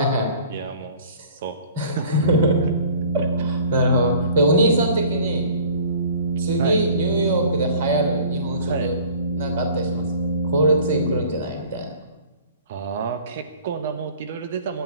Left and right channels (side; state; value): both; inverted; correlation -0.49